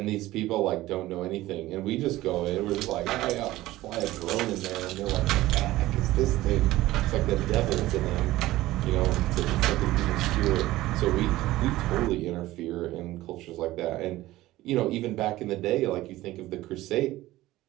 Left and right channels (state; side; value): quieter; left; 16.8 dB